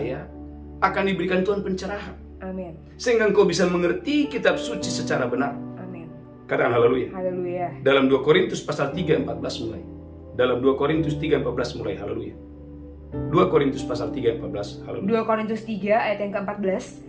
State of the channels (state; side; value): identical; both; correlation 1.00